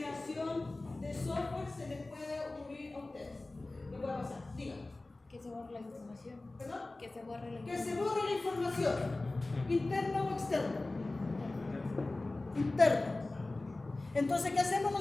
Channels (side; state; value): right; quieter; 3.0 dB